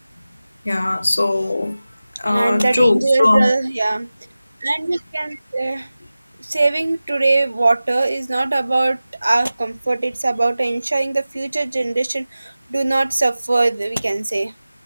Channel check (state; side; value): inverted; both; correlation -0.96